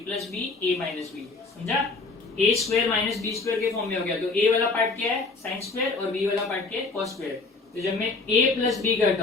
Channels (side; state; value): right; quieter; 3.7 dB